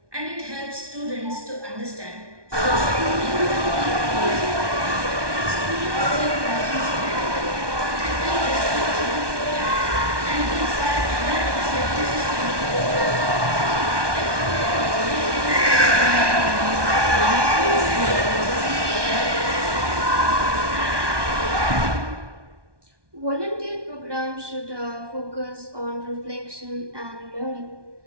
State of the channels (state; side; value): late; left; 1.2 ms